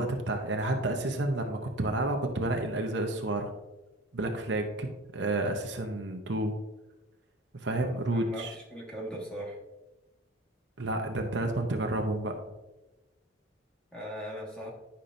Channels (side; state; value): both; normal; correlation 0.38